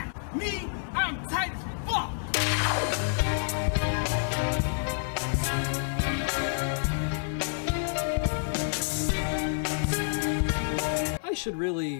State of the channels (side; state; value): right; silent; 57 dB below the other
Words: Me, I'm tight as fuck! I should